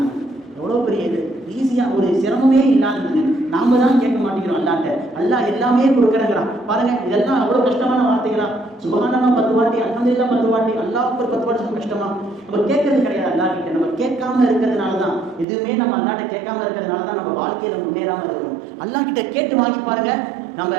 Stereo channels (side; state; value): left; drops out; at 15.5 s